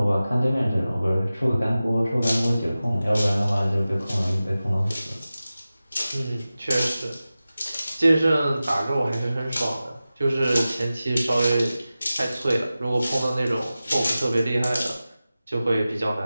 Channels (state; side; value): inverted; both; correlation -0.95